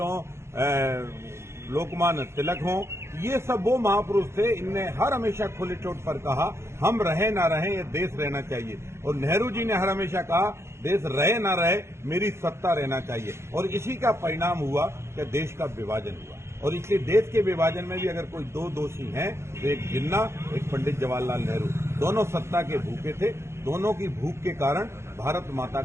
हों, लोकमान्य तिलक हों, ये सब वो महापुरुष थे। इनने हर हमेशा खुले चोट पर कहा हम रहे ना रहे, ये देश रहना चाहिए। और नेहरू जी ने हर हमेशा कहा देश रहे ना रहे, मेरी सत्ता रहना चाहिए। और इसी का परिणाम हुआ कि देश का विभाजन हुआ। और इसलिए देश के विभाजन में भी अगर कोई दो दोषी हैं तो एक जिन्ना, एक पंडित जवाहरलाल नेहरू। दोनों सत्ता के भूखे थे। दोनों की भूख के कारण भारत माता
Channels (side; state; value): left; late; 0.13 ms